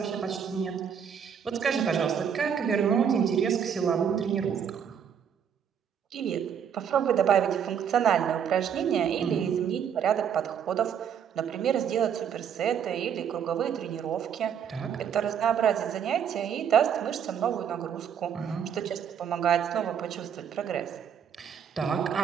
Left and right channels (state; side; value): quieter; left; 8.0 dB